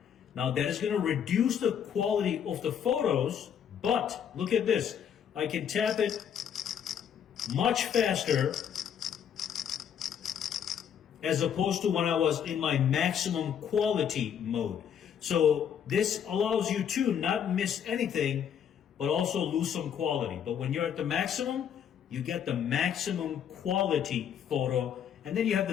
Now that is going to reduce the quality of the photos, but look at this. I can tap it much faster as opposed to when I was in my maximum quality mode. So this allows you to not miss anything, but also lose some quality. But when you're at the maximum, you get the maximum quality photo, and then you have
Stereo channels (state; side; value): quieter; right; 8.5 dB